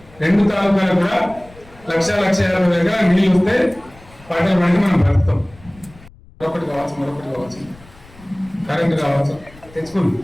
2 తాలూకాలు కూడా 1,50,000 నీళ్ళు వస్తే పంటలు పండి మనం బ్రతుకుతాం. మరొకటి కావచ్చు, కరెంటు కావచ్చు, తెచ్చుకుంది.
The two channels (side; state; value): left; noise; rumble, 24 dB below the sound